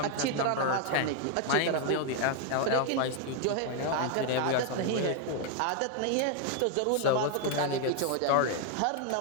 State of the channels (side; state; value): both; different; correlation 0.00